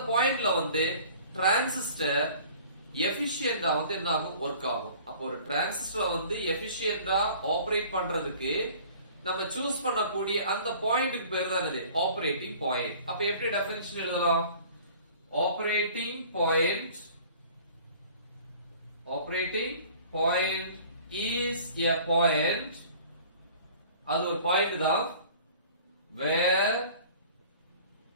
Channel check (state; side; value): inverted; both; correlation -0.48